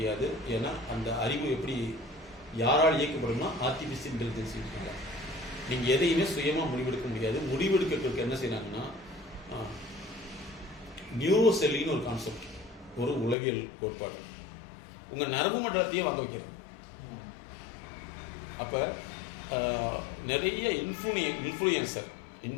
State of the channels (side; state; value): right; drops out; at 13.4 s